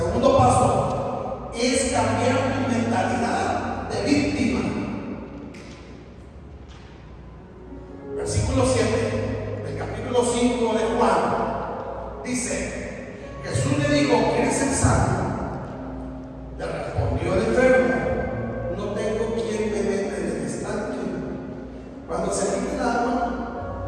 paso es cambiar tu mentalidad de víctima. Versículo 7 del capítulo 5 de Juan dice: Jesús le dijo, ¿quieres ser sano? Le respondió el enfermo, no tengo quien me meta en el estanque. Cuando se quite el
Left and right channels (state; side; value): identical; both; correlation 1.00